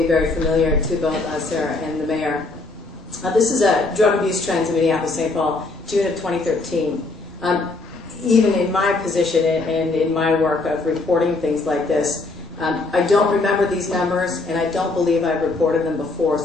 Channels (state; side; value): quieter; right; 3.4 dB